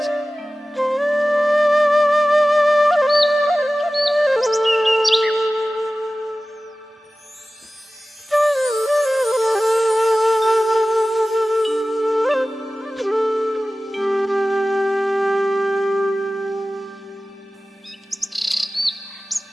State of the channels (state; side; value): normal; both; correlation 0.96